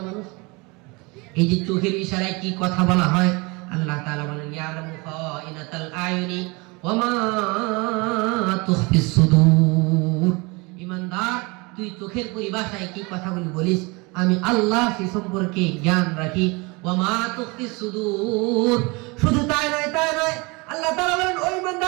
মানুষ। এই যে চোখের ইশারায় কি কথা বলা হয়, আল্লাহ তাআলা বলেন, ইয়ালামু খাইনাতাল আয়ুনি ওয়া মা তুখফিস সুদূর। ঈমানদার, তুই চোখের পরিভাষায় কি কথাগুলি বলিস, আমি আল্লাহ সে সম্পর্কে জ্ঞান রাখি। ওয়া মা তুখফিস সুদূর, শুধু তাই নয়, আল্লাহ তাআলা বলেন, ও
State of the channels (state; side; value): quieter; left; 26.9 dB